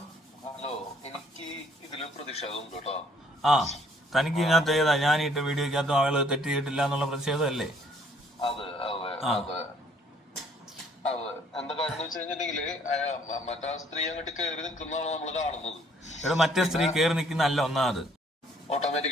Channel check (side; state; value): both; normal; correlation 0.62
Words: hello, എനിക്ക് ഇതില് പ്രതിഷേധമുണ്ട് കേട്ടോ. ആ തനിക്ക് ഇതിനകത്ത് ഏതാ ഞാൻ ഇട്ട വീഡിയോക്കകത്തും ആള് തെറ്റ് ചെയ്തിട്ടില്ല എന്നുള്ള പ്രതിഷേധമല്ലേ? അതെ അതെ അതെ അതെ. എന്താ കാര്യം എന്ന് വെച്ച് കഴിഞ്ഞിട്ടുണ്ടെങ്കില് മറ്റേ സ്ത്രീ അങ്ങോട്ട് കയറി നിൽക്കുന്നതാണ് നമ്മള് കാണുന്നത്. ഇവിടെ മറ്റേ സ്ത്രീ കയറി നിൽക്കുന്നല്ല ഒന്നാമത്,